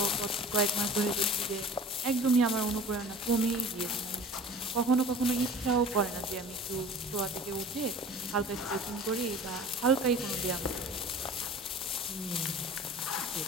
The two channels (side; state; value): both; normal; correlation 0.42